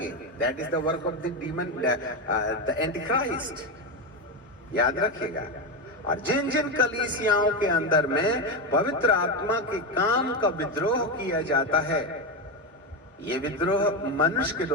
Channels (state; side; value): normal; both; correlation 0.12